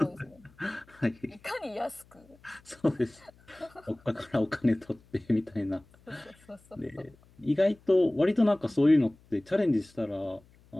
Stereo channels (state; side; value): noise; left; hum, 28 dB below the sound